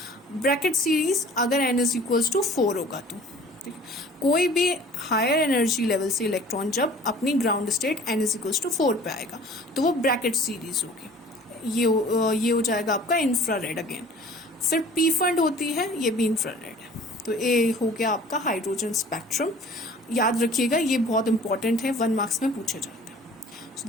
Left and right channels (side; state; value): both; normal; correlation 0.48